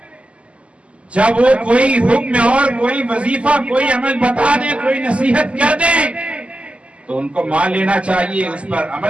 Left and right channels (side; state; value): left; late; 0.058 ms